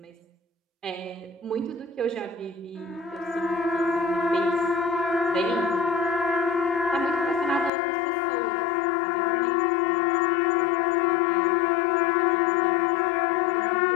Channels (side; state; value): right; drops out; at 7.7 s